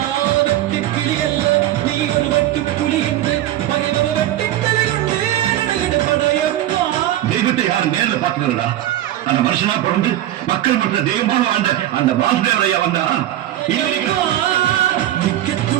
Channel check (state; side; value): quieter; left; 13.4 dB